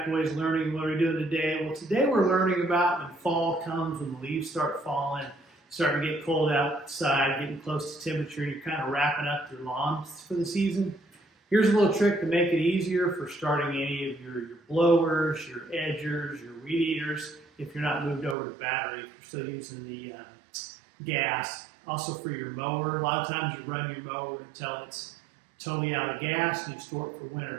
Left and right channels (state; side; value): drops out; left; at 18.4 s